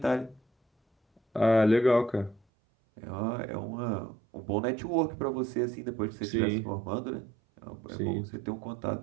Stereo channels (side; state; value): left; drops out; at 2.4 s